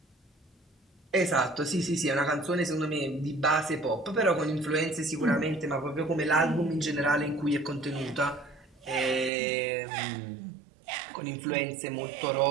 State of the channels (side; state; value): left; drops out; at 9.3 s